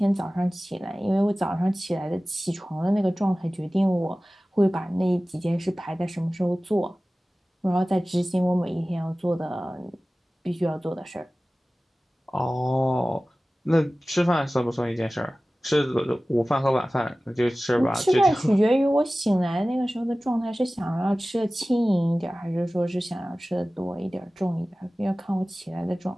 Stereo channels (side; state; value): both; normal; correlation 0.97